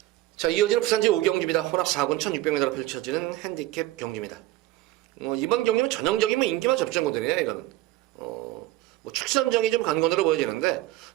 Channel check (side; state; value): left; quieter; 16.4 dB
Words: 자, 이어지는 부산제 5경주입니다. 혼합 4군 1600m로 펼쳐지는 핸디캡 경주입니다. 이번 경기는 전형적인 인기만 접전거든요. 이거는 뭐 축선정이 좀 간건으로 보여지는데,